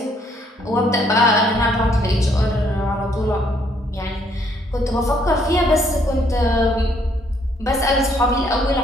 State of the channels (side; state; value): both; normal; correlation 0.67